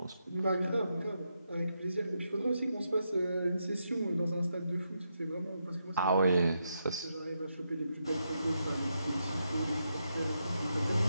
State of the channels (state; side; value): inverted; both; correlation -0.83